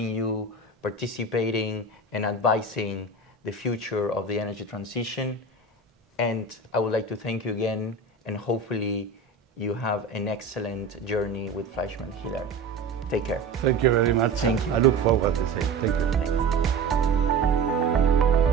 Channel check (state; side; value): quieter; left; 3.8 dB